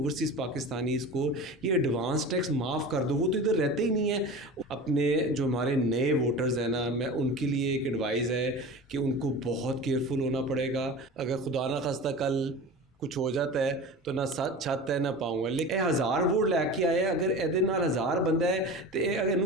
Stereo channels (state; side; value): normal; both; correlation 0.33